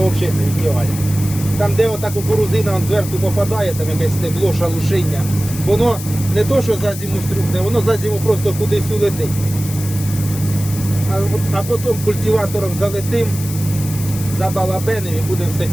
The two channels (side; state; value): left; noise; hiss, 11 dB below the sound